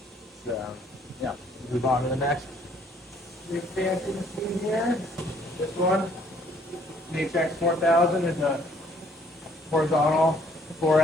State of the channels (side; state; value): both; normal; correlation 0.62